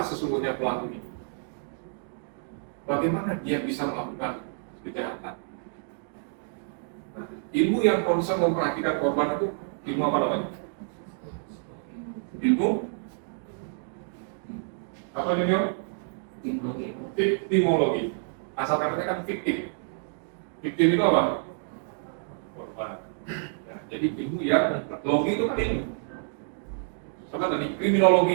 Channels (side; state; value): left; silent; digital silence